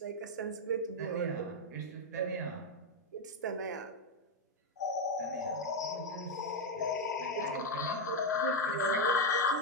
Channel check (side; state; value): both; normal; correlation 0.04